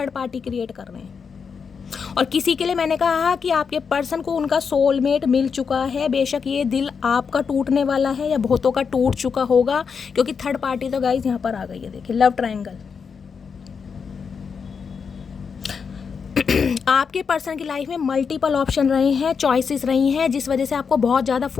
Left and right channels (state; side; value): quieter; right; 6.0 dB